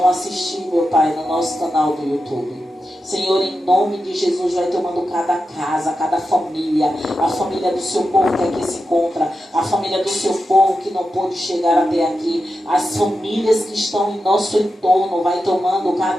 assistir, meu Pai, no nosso canal do YouTube. Senhor, em nome de Jesus, vai tomando cada casa, cada família, a família do seu povo que aqui se encontra, a família do seu povo que não pôde chegar até aqui, as famílias que estão em nosso entorno, vai tomando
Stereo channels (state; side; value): normal; both; correlation 0.90